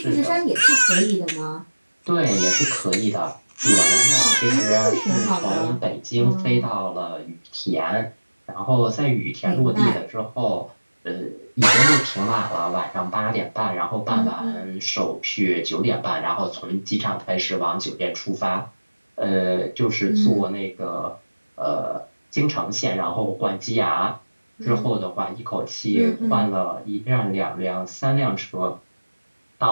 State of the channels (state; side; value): inverted; both; correlation -1.00